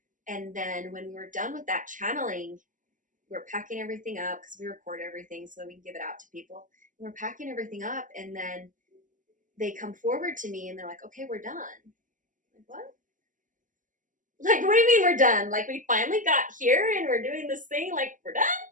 And then when we were done with that channeling, we're packing everything up, because we record everything so that we can give it out to people. And we're packing everything up, and then they come forward to me and they're like, okay, we're done. I'm like, what? Like, what do you mean we're done? Like, we finally got here and we're doing this thing, like, we're done?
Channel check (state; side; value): late; left; 0.38 ms